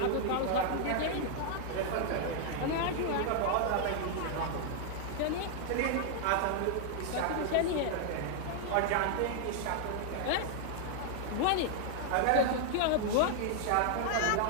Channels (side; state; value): both; different; correlation 0.00